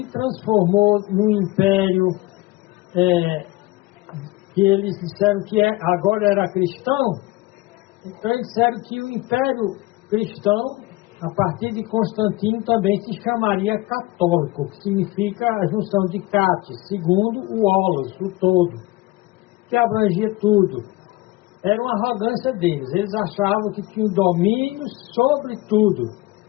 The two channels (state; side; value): quieter; right; 19.8 dB